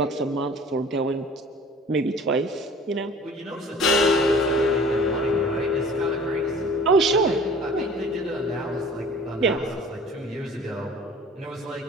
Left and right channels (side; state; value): both; normal; correlation 0.47